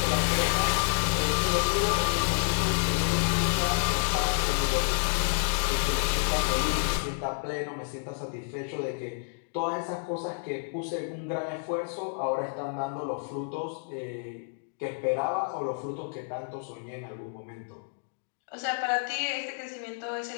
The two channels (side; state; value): right; silent; digital silence